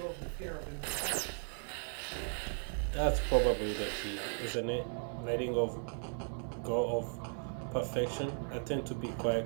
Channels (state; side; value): silent; left; 53 dB below the other